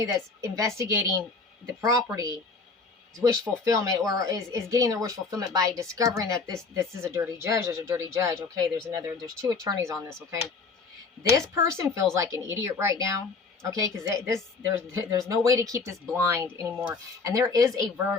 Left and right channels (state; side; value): quieter; right; 4.3 dB